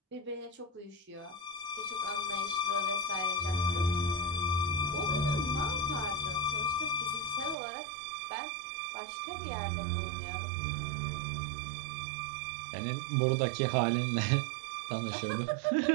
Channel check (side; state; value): left; drops out; at 7.6 s